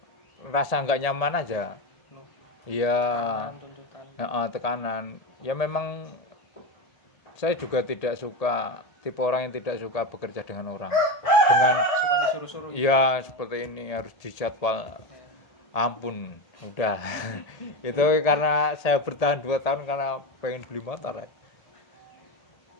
rasa nggak nyaman aja. Iya, tekanan. Ya memang saya juga tidak suka, tipe orang yang tidak suka bekerja dengan orang, dengan Suka disuruh-suruh. ya seperti ini harus dijadwal. Ampun, udah. Itu karena saya bertahan 2 tahun karena pengen beli motor ya.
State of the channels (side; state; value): right; late; 1.8 ms